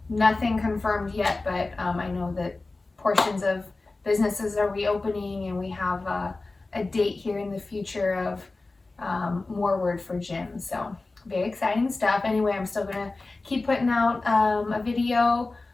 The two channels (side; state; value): right; quieter; 3.4 dB